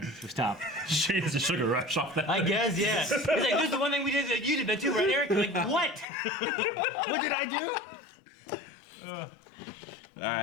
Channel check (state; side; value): drops out; right; at 6.1 s